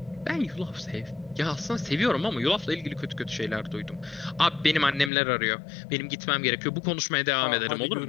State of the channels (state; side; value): drops out; right; at 5.1 s